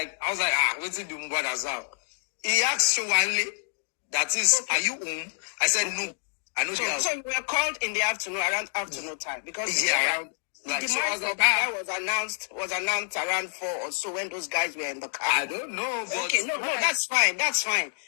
I was like, what did do Mohbad as well? He asked Showale, that is, okay, are you home? I said, no, I know the house. So you were called in the afternoon, around afternoon time, because around Like, The so I was demise of like, Mohbad was announced around 4 or so when those guys were in the car. I don't know, but Okay, no, that's fine. That's fine.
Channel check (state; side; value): silent; right; 60 dB below the other